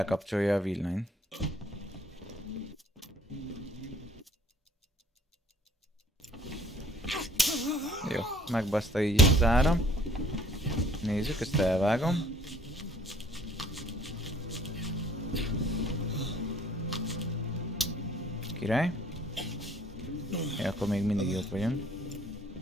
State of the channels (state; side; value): normal; both; correlation 0.57